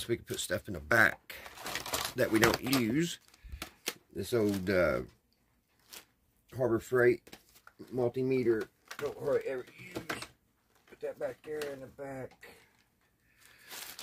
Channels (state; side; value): identical; both; correlation 1.00